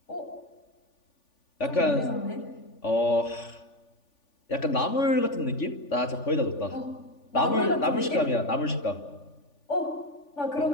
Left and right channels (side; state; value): right; late; 3.5 ms